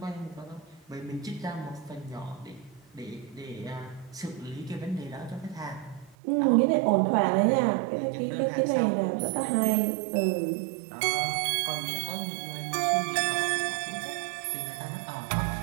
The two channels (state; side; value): drops out; left; at 6.2 s